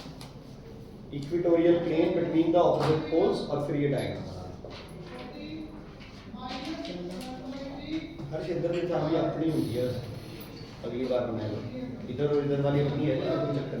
equatorial plane between the opposite poles, और फिर ये diagram बना। हर क्षेत्र में चाबी अपनी होती है, अगली बार बनाएगा। इधर और इधर वाली अपनी है, कोई चक्कर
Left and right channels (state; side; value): identical; both; correlation 1.00